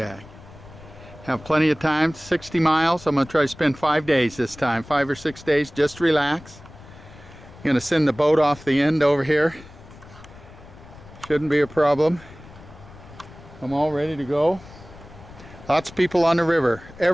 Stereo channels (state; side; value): noise; left; rumble, 20 dB below the sound